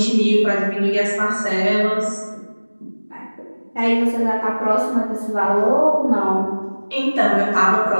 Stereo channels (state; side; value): inverted; both; correlation -1.00